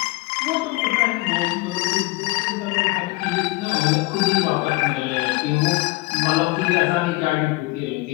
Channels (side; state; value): right; quieter; 23.3 dB